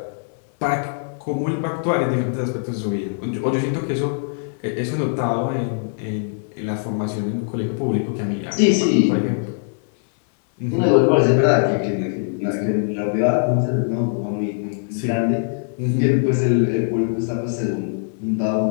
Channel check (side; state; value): right; silent; 59 dB below the other